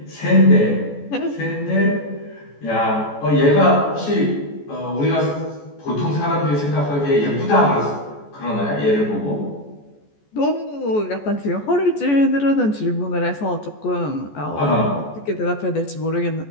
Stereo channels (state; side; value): late; right; 14 ms